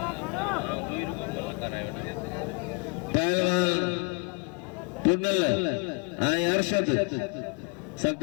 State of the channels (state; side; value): quieter; right; 33.8 dB